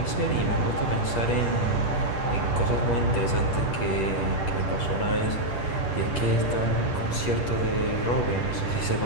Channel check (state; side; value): late; right; 10 ms